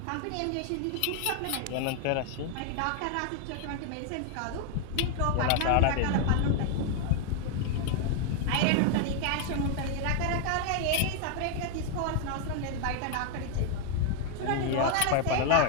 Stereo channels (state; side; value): different; both; correlation 0.00